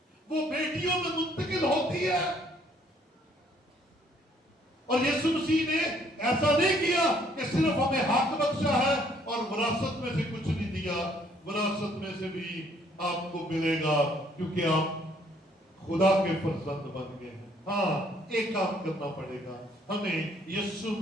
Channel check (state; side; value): normal; both; correlation 0.64